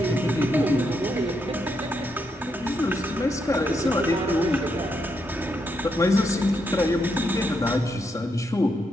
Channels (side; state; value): both; normal; correlation 0.80